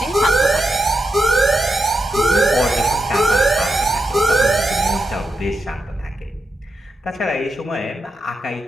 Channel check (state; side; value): normal; both; correlation 0.87